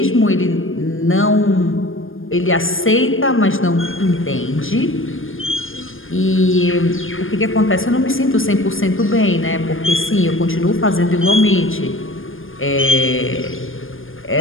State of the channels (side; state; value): right; late; 0.59 ms